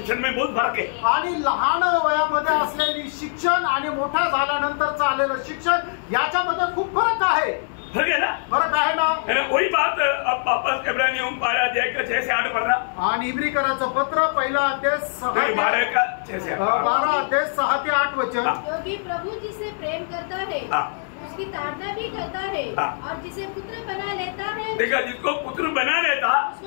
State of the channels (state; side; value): silent; right; 63 dB below the other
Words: में बहुत फर्क है. आणि लहान वयामध्ये असलेली शिक्षण आणि मोठा झाल्यानंतरचं आलेलं शिक्षण याच्यामध्ये खूप फरक आहे. फर्क है ना. फरक आहे ना. वही बात अब वापस इब्रानियों 12 अध्याय का 6 से 8 पढ़ना. आणि इब्रिकराचं पत्र 1 अध्याय 12 का 6 से 8 12 अध्याय 6 ते 8 वचन. क्योंकि प्रभु जिसे प्रेम करता है उसकी ताड़ना भी करता है. और जिसे पुत्र बना लेता है देखा जिसको पुत्र बना लेता